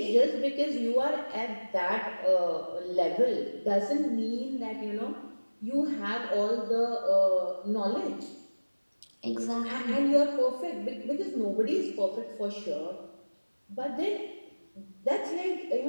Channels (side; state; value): both; inverted; correlation -1.00